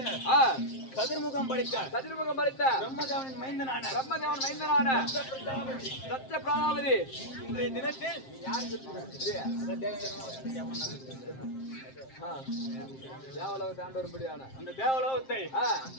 கதிர்முகம் படைத்த பிரம்மதேவனின் மைந்தனான சத்ய பிராணாவதி இன்றைய தினத்தில் தேவலோகத்தை ஆண்டு வரும்படியான அந்த தேவலோகத்தை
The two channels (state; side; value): late; right; 7.6 ms